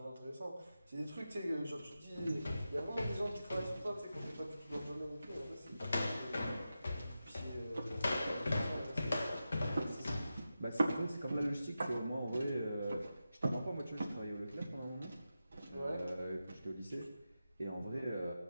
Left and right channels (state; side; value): inverted; both; correlation -0.91